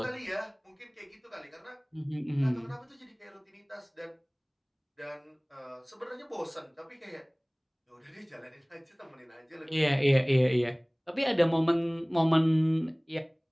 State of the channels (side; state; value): both; identical; correlation 1.00